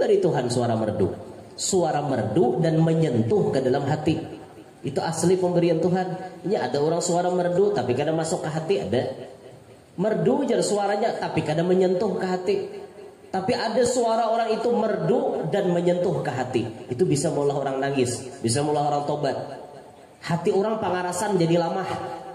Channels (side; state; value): both; identical; correlation 1.00